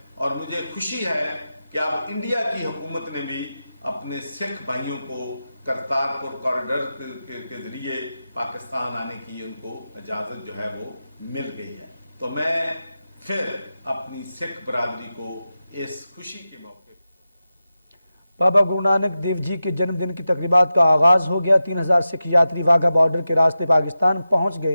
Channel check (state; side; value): inverted; both; correlation -0.92